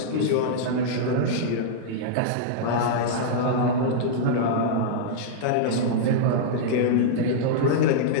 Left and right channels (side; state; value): both; different; correlation -0.02